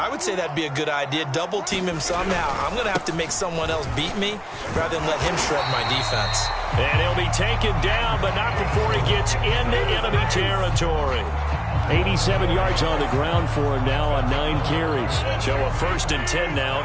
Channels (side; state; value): both; identical; correlation 1.00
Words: would say that'd be a good idea. Double team him somehow. I'm going to have to make someone else beat me rather than let him shred my defense. And he'll be taken down, but not before he gets into enemy territory. 87 yards on the ground for him now on 9 carries. So a 1st and 10 now